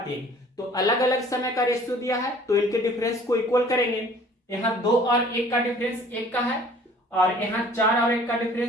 तो अलग अलग समय का रेशियो दिया है, तो इनके डिफरेंस को इक्वल करेंगे। यहाँ 2 और 1 का डिफरेंस 1 का है, और यहाँ 4 और 1 का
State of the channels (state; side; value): normal; both; correlation 0.52